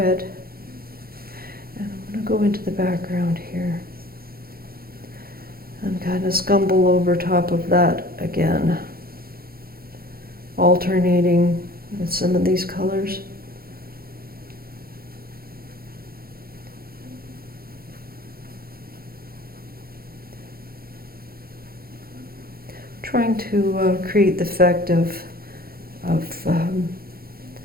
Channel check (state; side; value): late; left; 0.44 ms